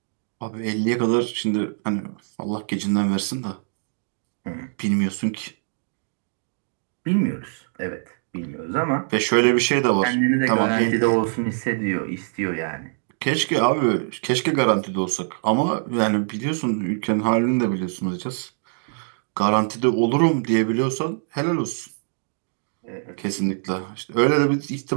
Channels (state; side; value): silent; left; digital silence